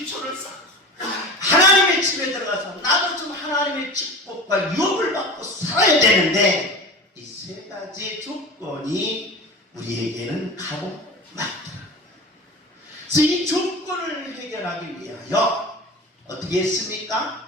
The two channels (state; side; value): normal; both; correlation 0.32